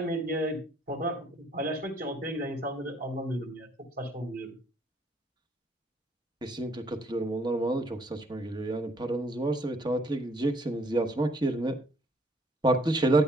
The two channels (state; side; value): normal; both; correlation 0.64